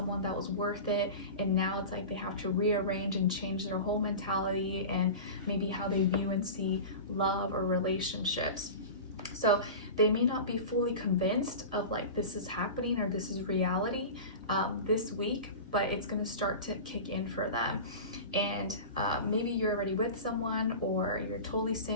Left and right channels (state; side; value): inverted; both; correlation -0.31